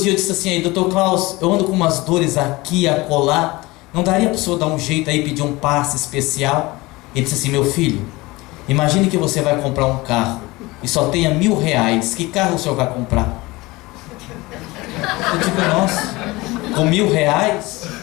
eu disse assim, aí, doutor Klaus, eu ando com umas dores aqui, acolá, não daria para o senhor dar um jeito aí, pedir um passe especial? Ele disse assim, meu filho, imagine que você vai comprar um carro e só tenha R$1.000, que carro o senhor vai comprar? Eu digo, nossa, com R$1.000?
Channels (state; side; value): quieter; right; 21.7 dB